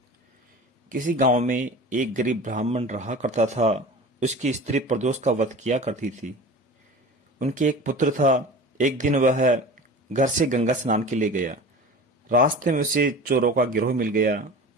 किसी गांव में एक गरीब ब्राह्मण रहा करता था। उसकी स्त्री प्रदोष का व्रत किया करती थी। उनके एक पुत्र था। एक दिन वह घर से गंगा स्नान के लिए गया। रास्ते में उसे चोरों का गिरोह मिल गया।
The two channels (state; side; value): normal; both; correlation 0.36